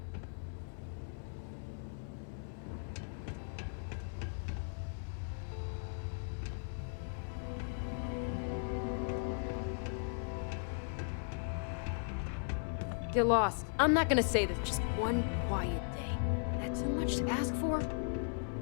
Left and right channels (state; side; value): silent; right; 53 dB below the other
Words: Get lost. I'm not gonna say this. Just one quiet day. That too much to ask for?